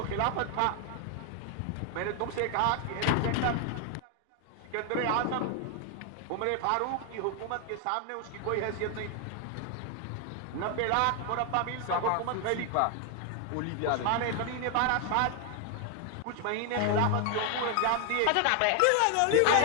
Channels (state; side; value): different; both; correlation 0.00